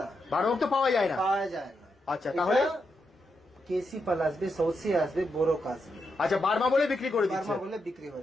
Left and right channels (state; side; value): normal; both; correlation 0.83